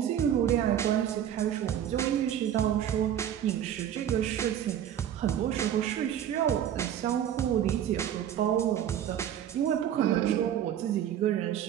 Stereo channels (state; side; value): quieter; left; 10.2 dB